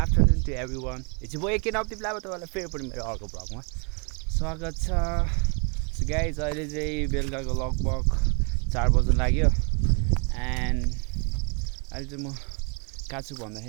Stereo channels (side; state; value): left; quieter; 38.7 dB